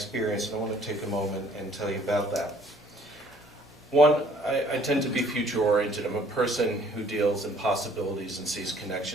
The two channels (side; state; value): both; normal; correlation 0.59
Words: and I want to take a moment and tell you about that. One, I tend to be future-oriented. I'm a person who deals in possibilities and sees